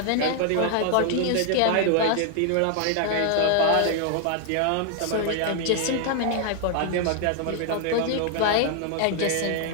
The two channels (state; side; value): different; both; correlation 0.00